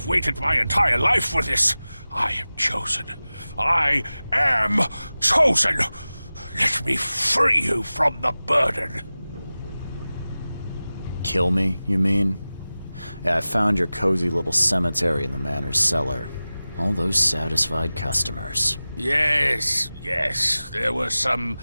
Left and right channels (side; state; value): both; inverted; correlation -0.97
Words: waited my entire life for this. I am chosen. I am chosen. Let me free you from the burden. Kill me, you mean? Yeah, I found your cozy little cemetery in the manor's cellar. All those satisfied customers. Yes, there were some